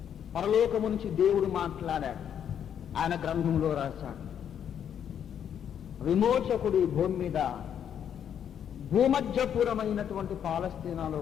పరలోకము నుంచి దేవుడు మాట్లాడాడు, ఆయన గ్రంథంలో రాశాడు. విమోచకుడు ఈ భూమి మీద భూమధ్యపురమైనటువంటి పాలస్తీనాలో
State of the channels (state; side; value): quieter; right; 8.9 dB